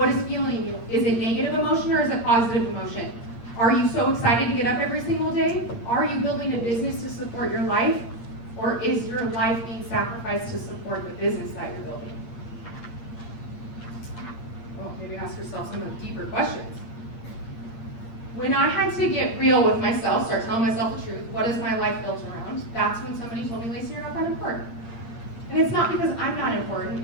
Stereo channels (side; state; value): right; late; 8.7 ms